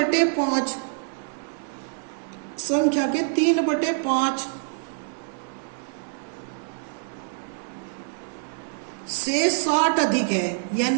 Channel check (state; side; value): silent; left; digital silence